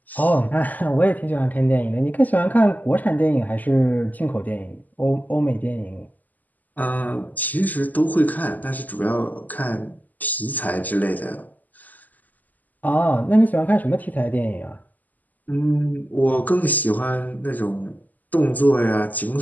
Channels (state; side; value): late; right; 0.082 ms